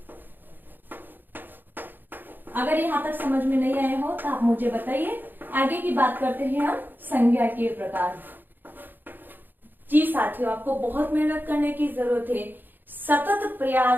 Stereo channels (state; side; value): late; left; 0.092 ms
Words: अगर यहां तक समझ में नहीं आए हो तो आप मुझे बताइए। आगे की बात करते हैं हम संज्ञा के प्रकार। जी साथियों, आपको बहुत मेहनत करने की जरूरत है। सतत